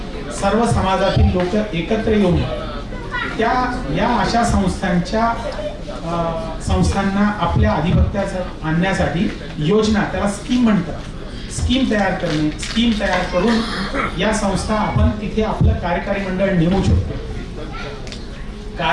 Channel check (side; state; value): both; identical; correlation 1.00